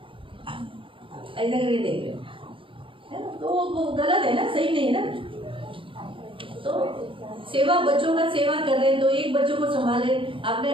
ऐसा करके देख रहे है ना. तो वो गलत है ना, सही नहीं है ना. तो सेवा, बच्चों का सेवा कर रहे हैं तो एक बच्चों को संभाले,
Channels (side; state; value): left; late; 0.25 ms